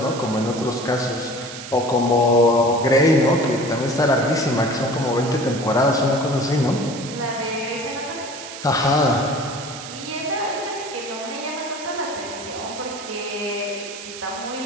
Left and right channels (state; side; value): noise; right; hiss, 12 dB below the sound